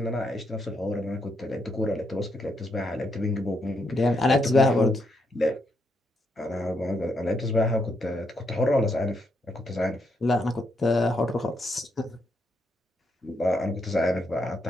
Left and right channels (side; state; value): both; normal; correlation 0.78